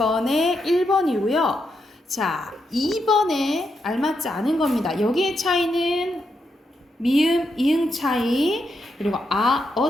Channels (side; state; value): both; normal; correlation 0.82